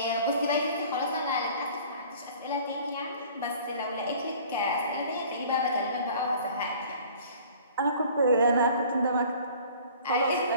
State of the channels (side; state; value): both; inverted; correlation -0.49